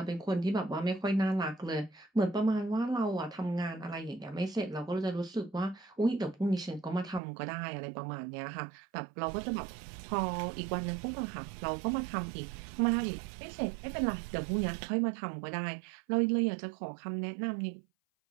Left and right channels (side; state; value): left; drops out; at 7.2 s